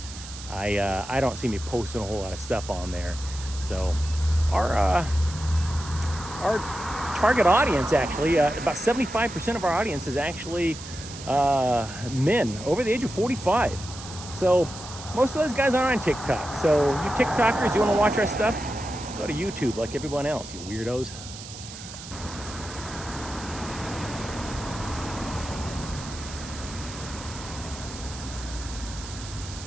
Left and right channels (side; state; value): right; noise; hiss, 13 dB below the sound